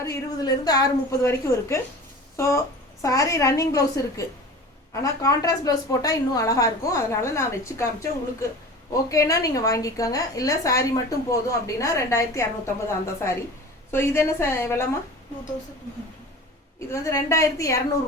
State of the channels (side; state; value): both; normal; correlation 0.37